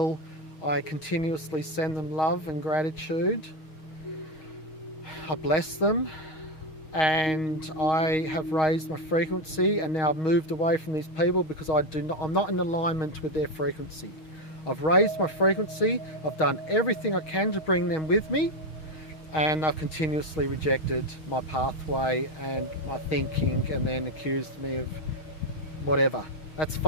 I continuously send them love and gratitude. I bless them, and I have raised my frequency, and now I've moved away from these people because I'm not in alignment with their frequency. I've raised my frequency, I've done everything I can to bring them with me, and I've continuously rejected my pathway and my thinking, and then accused me of whatever. That's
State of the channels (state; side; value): late; right; 6.4 ms